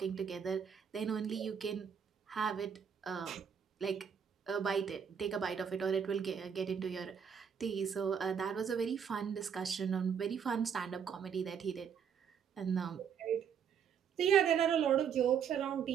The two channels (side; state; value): left; quieter; 7.4 dB